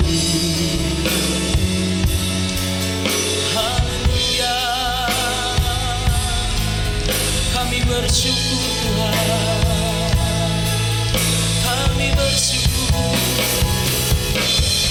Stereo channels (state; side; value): identical; both; correlation 1.00